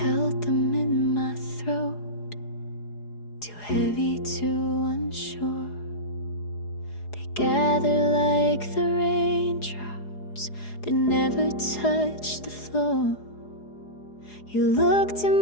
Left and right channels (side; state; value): right; late; 4.8 ms